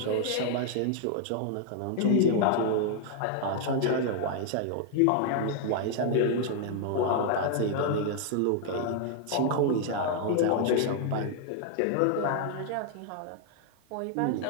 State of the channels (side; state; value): both; different; correlation 0.00